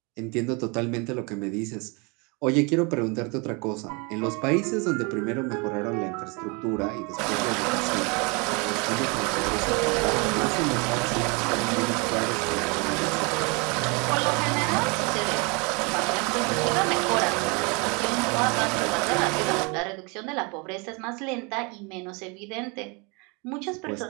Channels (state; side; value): quieter; left; 30.5 dB